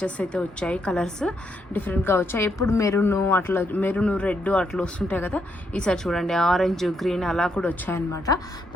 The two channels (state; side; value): normal; both; correlation 0.77